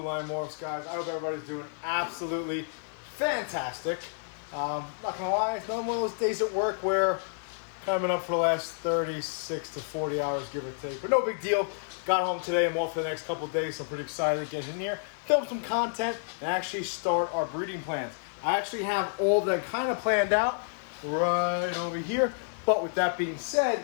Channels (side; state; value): right; silent; digital silence